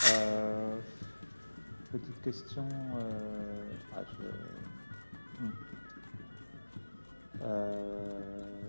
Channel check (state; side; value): inverted; both; correlation -1.00